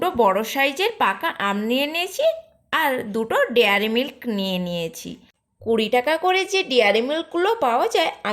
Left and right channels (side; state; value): both; identical; correlation 1.00